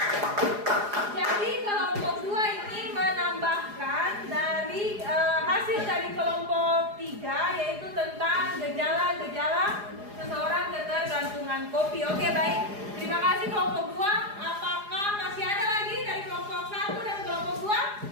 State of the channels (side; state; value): left; late; 4.8 ms